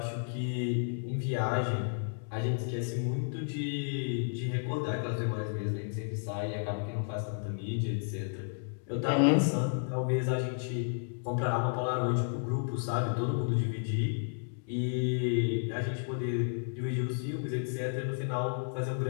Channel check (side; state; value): right; silent; digital silence